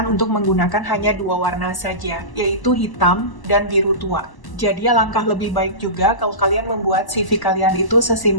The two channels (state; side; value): late; right; 1.0 ms